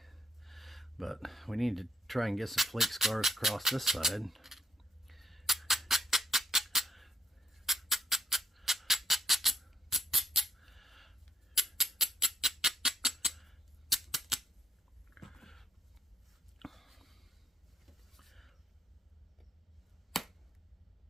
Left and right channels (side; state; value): both; normal; correlation 0.75